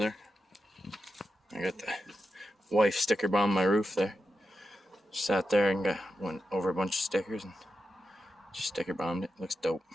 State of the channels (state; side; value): normal; both; correlation 0.88